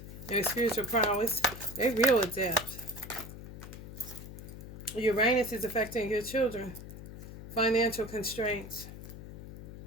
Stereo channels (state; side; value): noise; left; hum, 12 dB below the sound